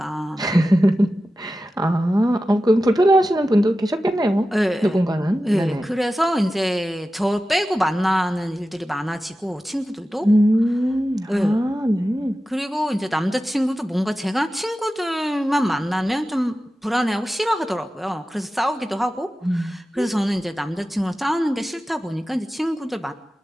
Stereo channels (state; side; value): normal; both; correlation 0.94